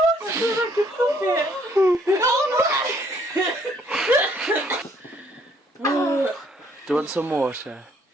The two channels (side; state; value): both; normal; correlation 0.65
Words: Do you want some water?